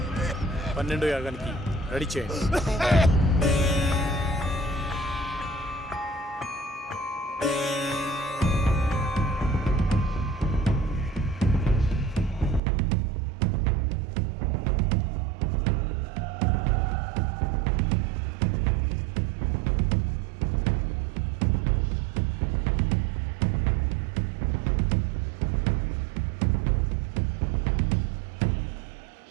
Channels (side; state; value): left; drops out; at 12.6 s